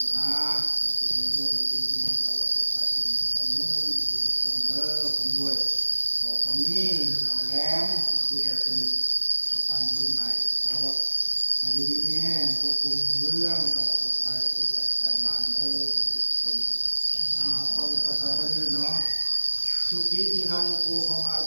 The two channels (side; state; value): both; inverted; correlation -1.00